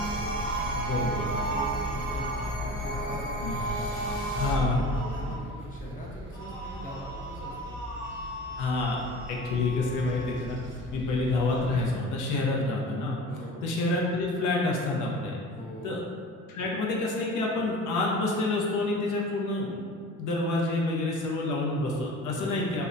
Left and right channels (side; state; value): both; normal; correlation 0.38